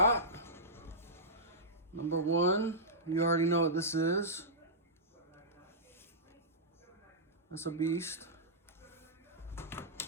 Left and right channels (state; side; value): normal; both; correlation -0.15